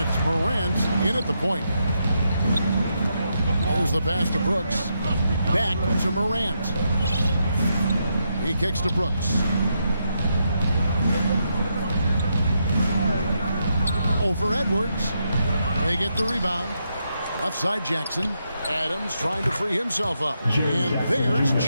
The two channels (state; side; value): inverted; both; correlation -0.81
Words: Morant in at the point. There's the pass to Brooks. Back to Morant. He kicks to Brooks. Over Edwards. They get the rebound. Left side Jackson. Adams trying to free himself up. And there's